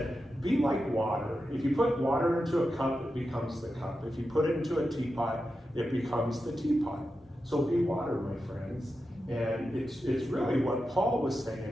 be like water. If you put water into a cup, it becomes the cup. If you put it into a teapot, it becomes the teapot. So be water, my friends. And it's really what Paul was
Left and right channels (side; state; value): both; normal; correlation 0.90